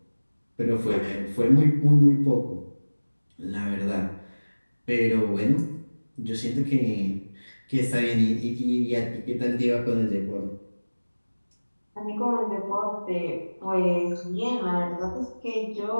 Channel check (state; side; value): inverted; both; correlation -1.00